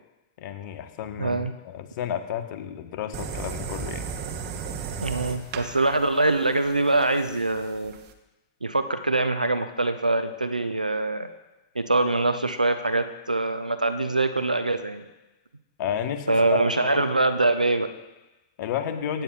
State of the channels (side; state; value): both; inverted; correlation -0.71